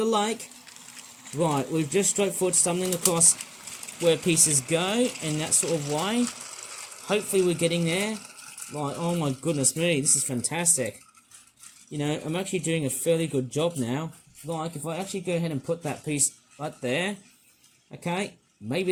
lake. Right, we've just straightforward stumbling across where pieces go in that sort of way. Hopefully we're getting there. Right, oh my goodness me, this is fantastic. You know, I'm actually doing a fairly good job now. Like, if I actually go ahead and put that piece right there, Okay,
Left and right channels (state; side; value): identical; both; correlation 1.00